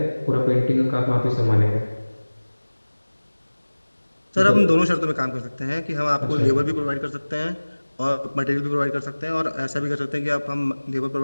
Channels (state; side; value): inverted; both; correlation -1.00